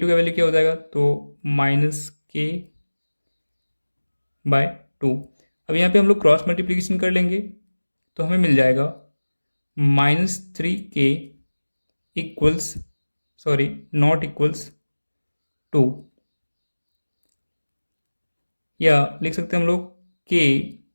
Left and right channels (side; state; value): both; inverted; correlation -1.00